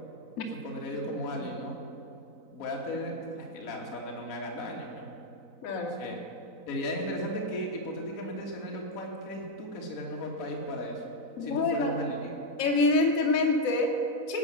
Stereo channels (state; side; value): late; right; 4.0 ms